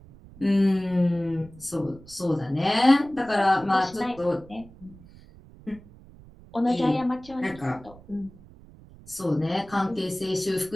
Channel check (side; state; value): right; noise; rumble, 22 dB below the sound